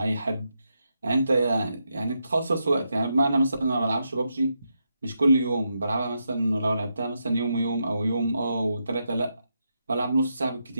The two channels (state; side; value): inverted; both; correlation -0.83